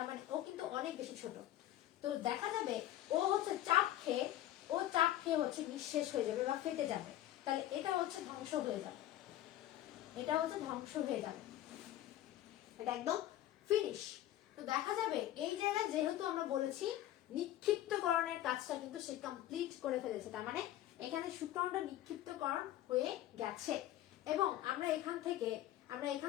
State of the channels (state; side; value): quieter; right; 13.5 dB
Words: মানে ও কিন্তু অনেক বেশি ছোট। তো দেখা যাবে ও হচ্ছে চাপ খেয়ে হচ্ছে নিঃশেষ হয়ে যাবে বা ফেটে যাবে। তাহলে এটা হচ্ছে ধ্বংস হয়ে যাবে, এটা হচ্ছে ধ্বংস হয়ে যাবে, এটা একদম ফিনিশ। তো দেখা যাবে এই জায়গায় যেহেতু আমরা বলেছি নিক্ষিপ্তকরণের কাজটা কিন্তু সে কমপ্লিট করে ফেলেছে, তার মানে এখানে শুক্রাণুটা নিক্ষিপ্তকরণ হয়ে গেছে। এবং আমরা এখান